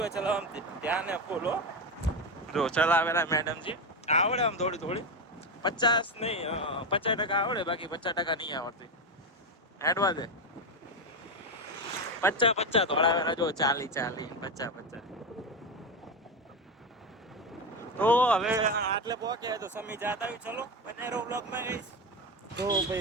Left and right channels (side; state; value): both; normal; correlation 0.14